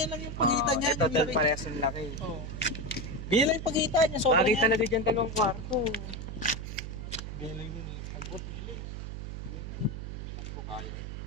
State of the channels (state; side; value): noise; right; hum, 7 dB below the sound